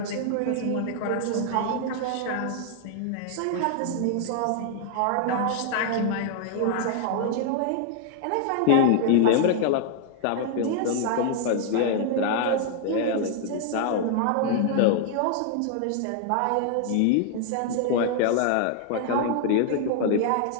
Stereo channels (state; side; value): different; both; correlation 0.00